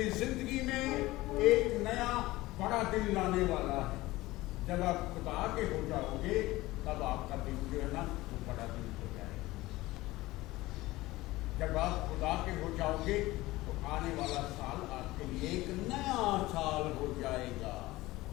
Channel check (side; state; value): right; quieter; 18.8 dB